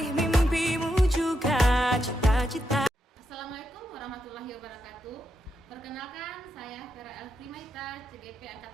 mimpimu juga cita-cita. Assalamualaikum warahmatullahi wabarakatuh. Perkenalkan, saya Vera Elfrimaita, CGP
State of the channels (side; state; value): both; normal; correlation 0.84